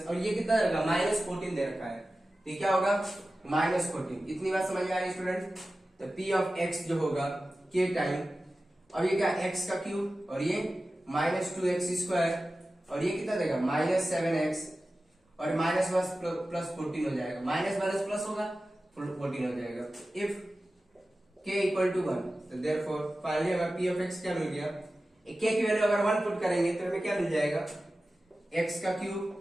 और ये कितना दे रखा है, -14 दे रखा है, तो ये क्या होगा -14। इतनी बात समझ में आ रही है स्टूडेंट। तो पी ऑफ एक्स जो होगा के टाइम, अब ये क्या एक्स का क्यूब और ये -2x स्क्वायर और ये कितना देगा -7x और माइनस प्लस 14 हो जाएगा, माइनस माइनस प्लस होगा 14 हो जाएगा। इफ k इक्वल टू 1 तो देयरफॉर फाइनली हमें p ऑफ x क्या मिल गया, k की वैल्यू अगर 1 पुट करेंगे तो हमें क्या मिल जाएगा, x का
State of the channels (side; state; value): both; normal; correlation 0.95